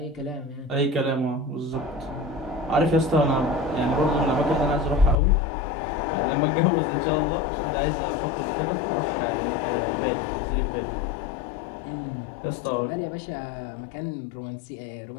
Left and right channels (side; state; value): right; drops out; at 5.2 s